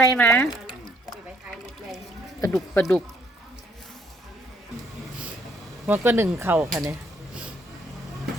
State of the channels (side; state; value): both; normal; correlation 0.68